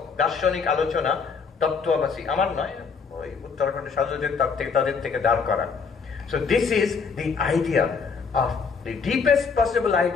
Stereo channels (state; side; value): quieter; right; 5.4 dB